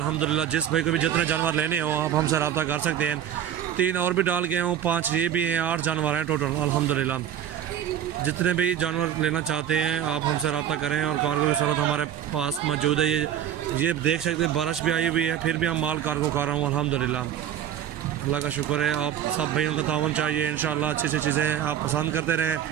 जिस भाई को भी जितने जानवर लेने हो आप हमसे रब्ता कर सकते हैं। 3 और भी डाल गए हूँ, 5 ये भी हैं, 8 जानवर हैं टोटल अल्हम्दुलिल्लाह। जितने भी जानवर लेना चाहते हैं आप हमसे रब्ता करें। और कार्गो की सूरत हमारे पास मौजूद है। ये देख सकते हैं बारिश भी आई हुई है, फिर भी हम माल कार्गो कर रहा हूँ अल्हम्दुलिल्लाह। अल्लाह का शुक्र है। आप सब भाइयों का तावन चाहिए इंशाल्लाह। अच्छी अच्छी चीज़ें आप पसंद करते रहें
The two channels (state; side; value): quieter; left; 10.0 dB